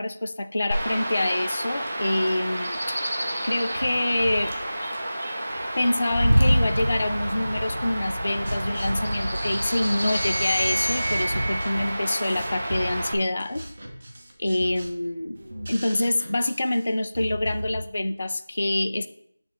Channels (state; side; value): inverted; both; correlation -0.97